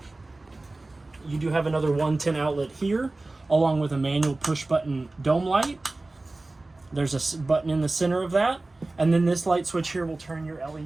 You do have another 110 outlet here, along with a manual push button dome light. There's a button in the center of that, and then this light switch here will turn your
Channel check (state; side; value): quieter; left; 3.0 dB